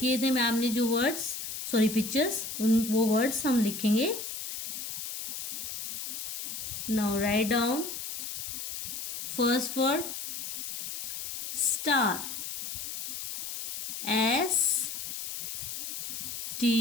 थे मैम ने जो वर्ड्स, सॉरी पिक्चर्स, वो वर्ड्स हम लिखेंगे. Now write down first word star. S T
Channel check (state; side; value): noise; left; hiss, 6 dB below the sound